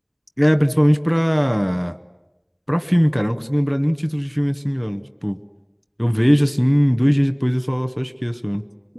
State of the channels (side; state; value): both; identical; correlation 1.00